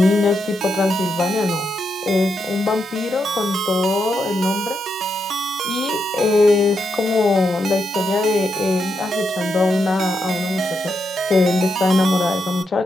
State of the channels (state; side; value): normal; both; correlation 0.83